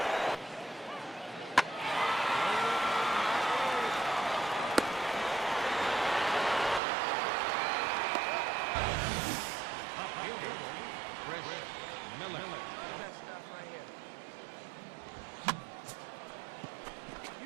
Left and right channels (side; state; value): left; drops out; at 6.8 s